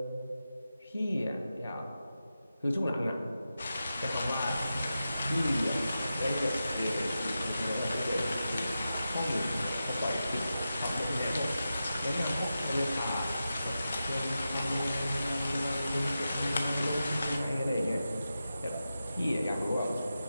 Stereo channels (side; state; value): both; inverted; correlation -0.91